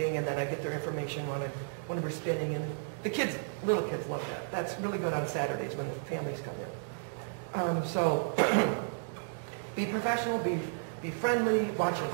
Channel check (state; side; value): silent; left; 56 dB below the other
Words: and then I get their information when we're spinning, and the kids, little kids love that. That's really good on Saturdays when the families come in. So be professional, be friendly, watch your